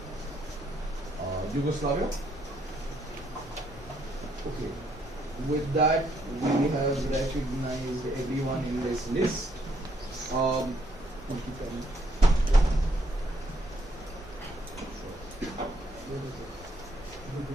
Yugoslavia. Okay. With that, we have recognized everyone in this list. Thank you, Penny.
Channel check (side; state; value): both; normal; correlation 0.71